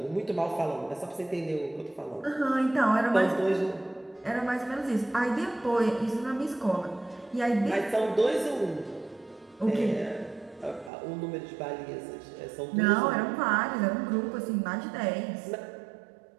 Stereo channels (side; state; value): left; drops out; at 10.9 s